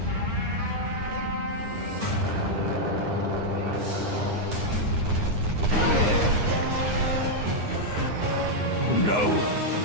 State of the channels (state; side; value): late; left; 9.7 ms